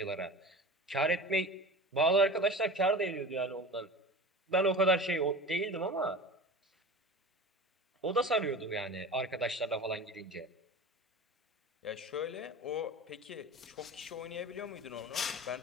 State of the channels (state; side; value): normal; both; correlation 0.34